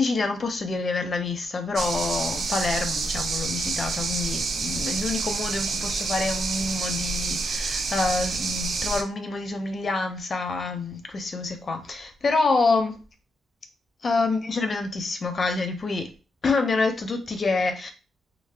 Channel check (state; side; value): normal; both; correlation 0.81